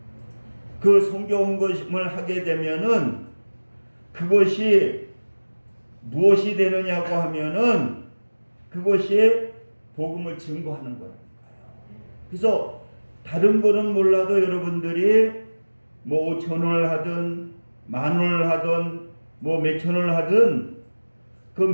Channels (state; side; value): inverted; both; correlation -1.00